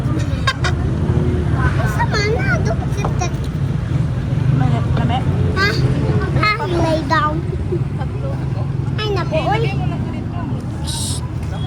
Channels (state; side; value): identical; both; correlation 1.00